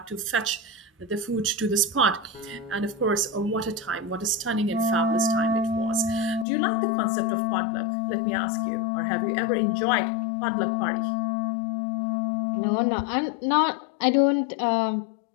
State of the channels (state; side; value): drops out; right; at 6.5 s